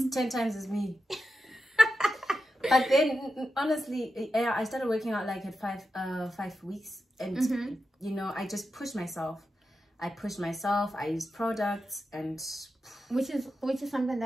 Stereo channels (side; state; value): both; normal; correlation 0.89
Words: It's 10 times as me. But then, honestly, I started working out like at 5 weeks, and you know, I just pushed myself. I used products, and which is something